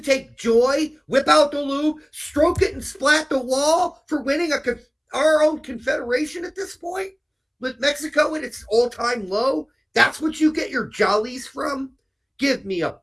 joy, whip out the lube, stroke it and splat the wall for winning our own confederation at this point? With Mexico at its all-time low? That's what you get your jollies from? Give me a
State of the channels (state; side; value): identical; both; correlation 1.00